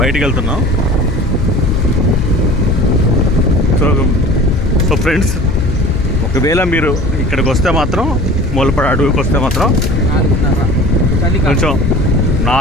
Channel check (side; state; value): left; noise; hum, 7 dB below the sound